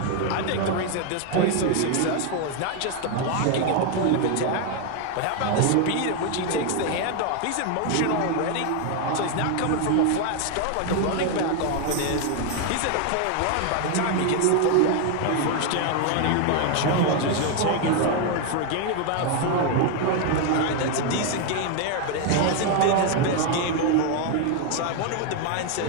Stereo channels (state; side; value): different; both; correlation 0.01